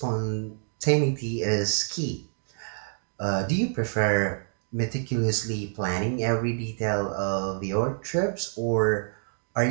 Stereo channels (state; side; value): silent; left; digital silence